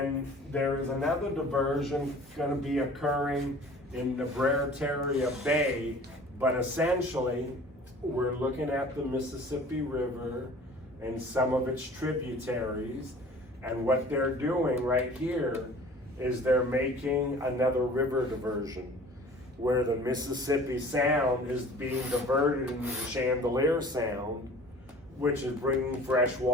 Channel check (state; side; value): normal; both; correlation 0.46